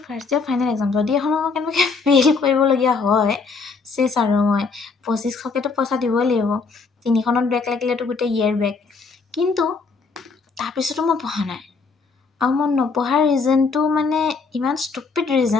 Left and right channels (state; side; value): quieter; right; 4.5 dB